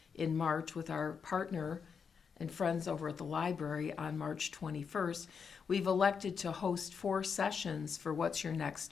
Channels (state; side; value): quieter; right; 6.2 dB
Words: in March with our partner and friends over at the library on March 21st, we've elected to host 4 sessions for What's Your